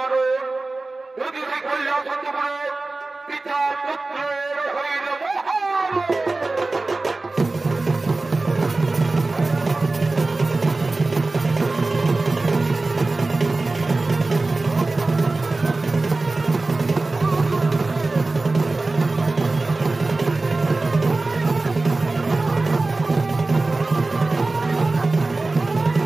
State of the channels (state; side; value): quieter; left; 3.3 dB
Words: যদি সে কৈলাসন করে পিতা পুত্রের হইল মহার।